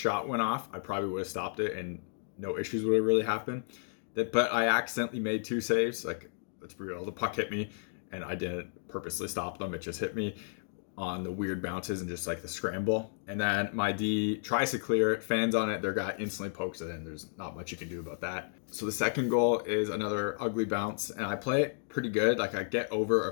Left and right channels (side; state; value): right; silent; digital silence